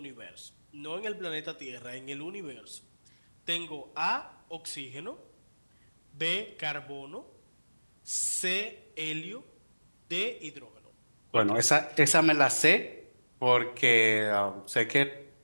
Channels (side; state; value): both; inverted; correlation -1.00